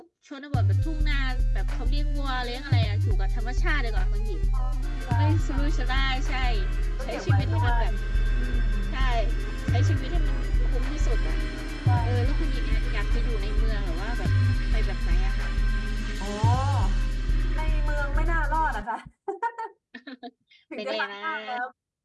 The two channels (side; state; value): both; identical; correlation 1.00